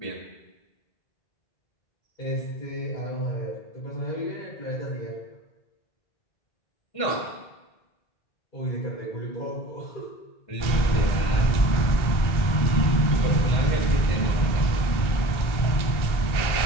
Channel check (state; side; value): late; right; 1.4 ms